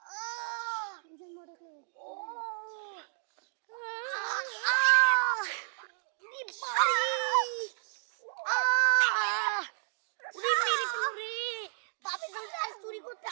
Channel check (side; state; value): left; silent; digital silence